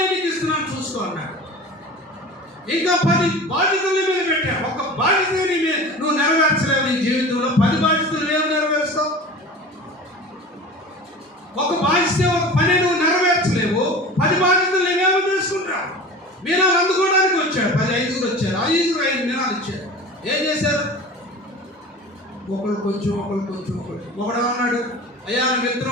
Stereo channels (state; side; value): normal; both; correlation 0.36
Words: నీకు ఇస్తున్నాను, చూసుకో అన్నాడు. ఇంకా 10 బాధ్యతలు మీద పెట్టా. ఒక బాధ్యతని నువ్వు నెరవేర్చలేవు. నీ జీవితంలో 10 బాధ్యతలు ఏమి నెరవేరుస్తావు? ఒక బాధ్యత ఒక పని నువ్వు నెరవేర్చలేవు. 10 బాధ్యతలు నేనేమో తీసుకుంటావు. మీనాలు అందుకోవడానికి వచ్చాడు. 10 5 వచ్చారు. 5 మీనాలు ఇచ్చారు. ఏం చేశారు? ఒకళ్ళు కొంచెం ఒకడు అన్నాడు, అయ్యా నువ్వు